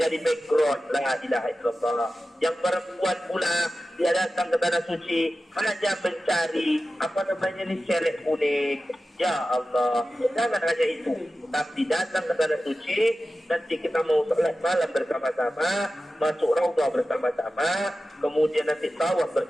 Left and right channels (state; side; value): normal; both; correlation 0.94